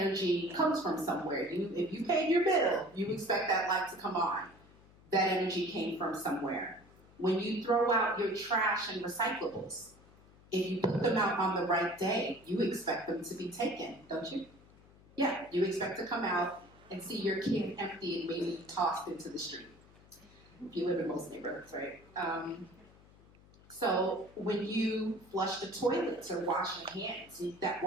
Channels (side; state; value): left; noise; hum, 25 dB below the sound